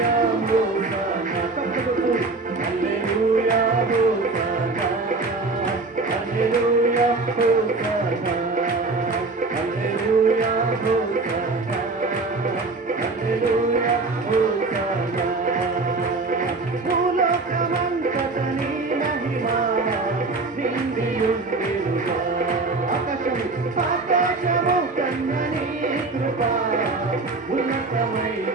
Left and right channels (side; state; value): left; quieter; 3.6 dB